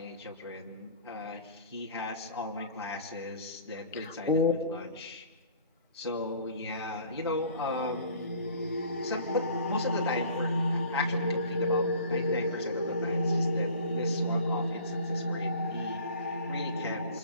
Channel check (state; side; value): inverted; both; correlation -0.49